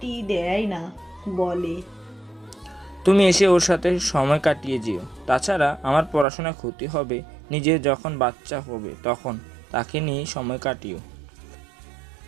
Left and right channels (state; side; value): drops out; left; at 6.2 s